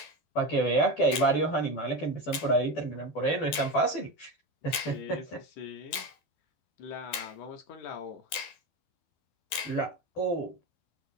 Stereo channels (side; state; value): right; late; 12 ms